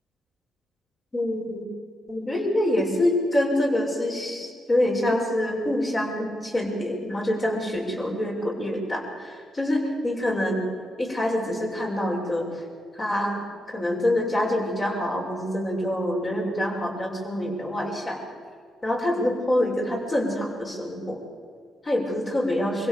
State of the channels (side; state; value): both; normal; correlation 0.84